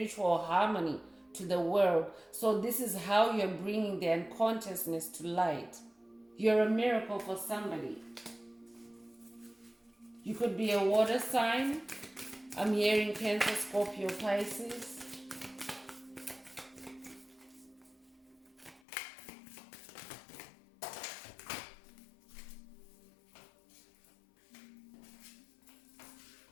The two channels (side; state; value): right; drops out; at 18.8 s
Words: harmony to the world. So this is how you're bringing the unconsciousness to light. You're a miracle for somebody. You could be a water sign. I'm hearing Cancer, Scorpio, Pisces.